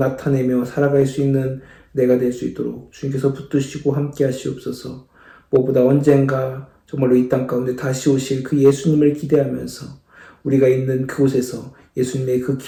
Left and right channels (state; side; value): identical; both; correlation 1.00